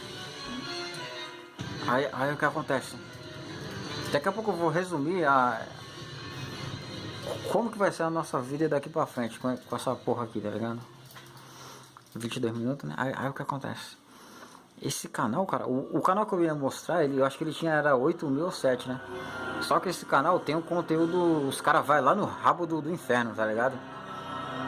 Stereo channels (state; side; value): identical; both; correlation 1.00